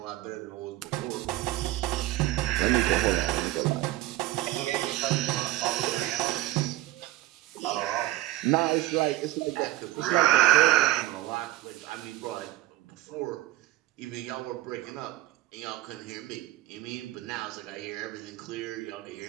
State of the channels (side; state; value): left; quieter; 15.4 dB